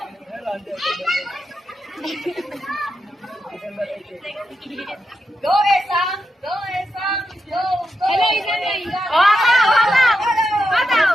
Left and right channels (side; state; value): both; normal; correlation 0.86